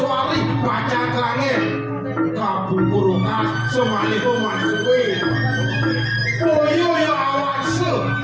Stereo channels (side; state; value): both; identical; correlation 1.00